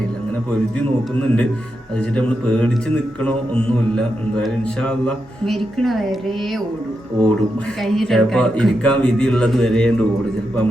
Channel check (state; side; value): normal; both; correlation 0.86